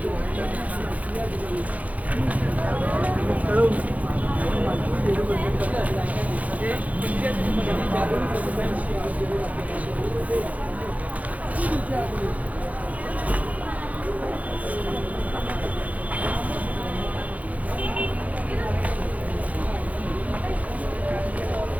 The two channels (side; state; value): left; late; 0.071 ms